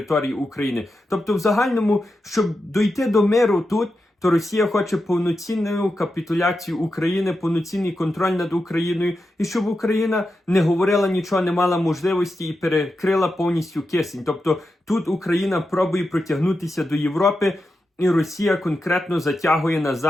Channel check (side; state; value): both; normal; correlation 0.89